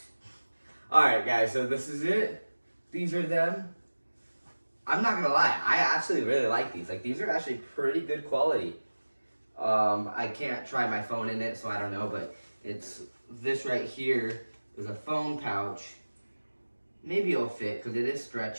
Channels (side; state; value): both; inverted; correlation -1.00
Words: All right, guys. So this is it. These are them. I'm not gonna lie, I actually really like these. These are actually pretty good quality. I can't try my phone in it, so I don't know, but this right here is a phone pouch. Maybe it'll fit because it is